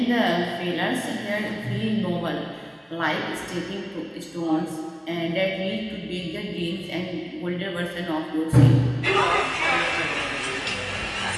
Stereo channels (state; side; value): identical; both; correlation 1.00